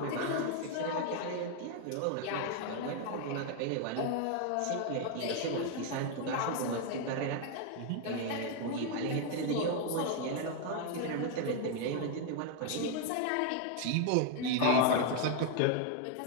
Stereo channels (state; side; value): different; both; correlation 0.00